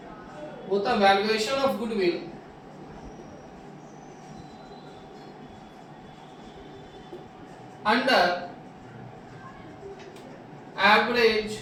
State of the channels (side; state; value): both; identical; correlation 1.00